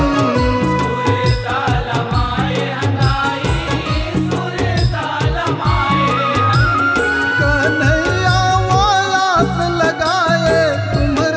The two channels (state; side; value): identical; both; correlation 1.00